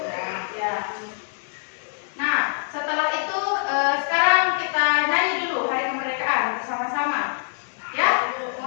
Ya. Nah, setelah itu sekarang kita nyanyi dulu Hari Kemerdekaan bersama-sama. Ya,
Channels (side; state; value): right; silent; digital silence